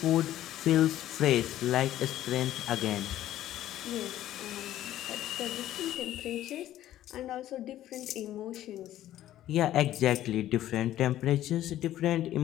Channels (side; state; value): right; quieter; 13.1 dB